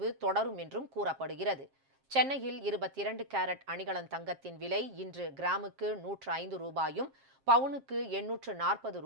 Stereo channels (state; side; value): late; left; 7.5 ms